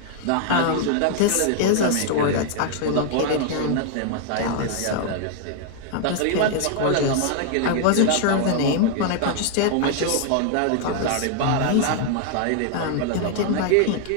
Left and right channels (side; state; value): both; different; correlation 0.00